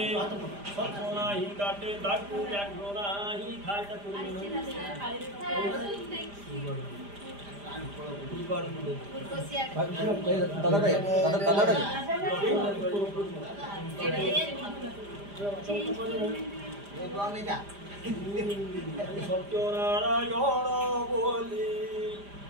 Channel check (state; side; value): late; left; 5.0 ms